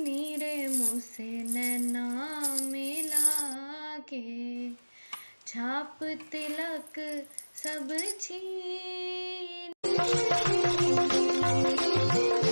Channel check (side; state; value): both; inverted; correlation -1.00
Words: नीरे मुझसे नैना मिला के छाप तिलक सब छीन।